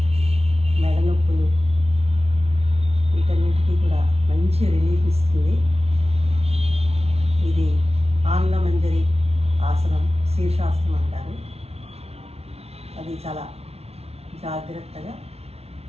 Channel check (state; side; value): late; left; 0.30 ms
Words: మెడ నొప్పులు వీటన్నిటికీ కూడా మంచి రిలీఫ్ ఇస్తుంది. ఇది ఆంగ్లమంజరి ఆసనం, శీర్షాసనం అంటారు. అది చాలా జాగ్రత్తగా